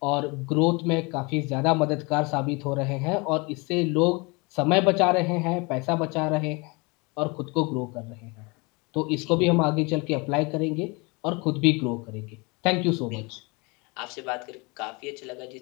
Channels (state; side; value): quieter; right; 28.0 dB